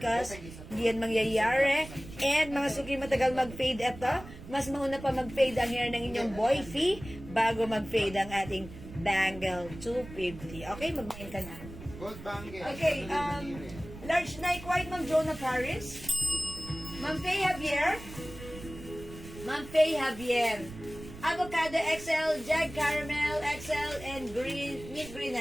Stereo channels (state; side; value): noise; right; rumble, 14 dB below the sound